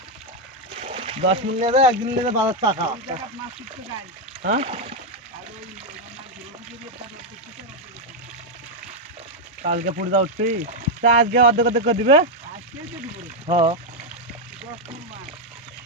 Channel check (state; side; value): normal; both; correlation 0.01